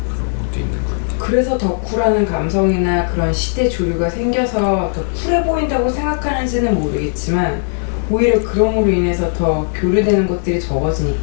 그런 것도 있는 것 같아요. 그래서 더 쿨하는 감성이나 그런 시대 조류가 생겨서 더 쿨해 보인다고 생각하는지는 모르겠지만 오히려 그럼으로 인해서 더 교류되는 것들이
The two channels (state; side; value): silent; right; digital silence